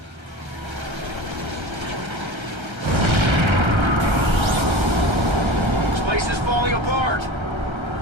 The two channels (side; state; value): left; late; 1.3 ms